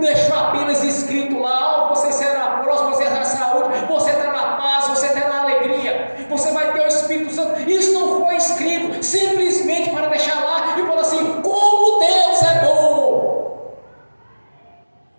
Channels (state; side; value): inverted; both; correlation -1.00